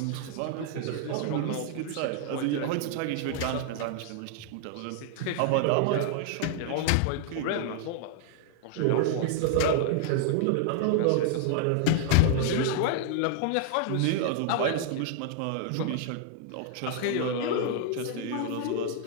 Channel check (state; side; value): different; both; correlation 0.00